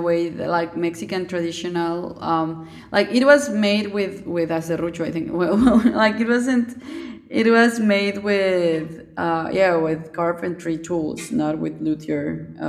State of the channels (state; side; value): identical; both; correlation 1.00